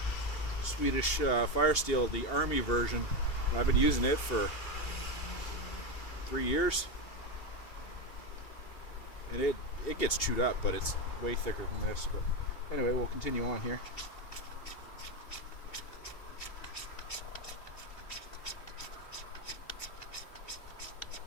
Swedish Fire Steel, the Army version. I've been using it for 3 years, and it gets chewed up, but it's way thicker than this. But anyway, we'll continue on here.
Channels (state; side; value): late; right; 2.7 ms